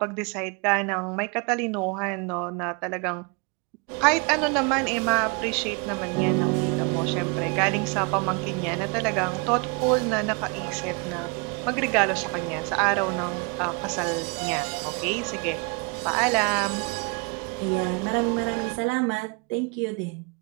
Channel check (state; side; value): quieter; left; 31.6 dB